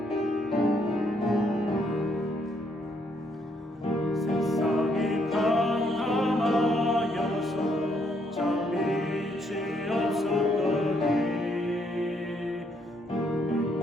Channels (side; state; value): both; normal; correlation 0.72